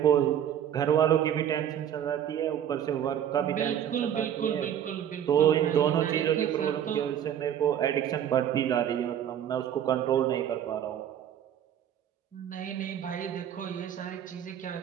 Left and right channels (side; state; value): left; quieter; 9.9 dB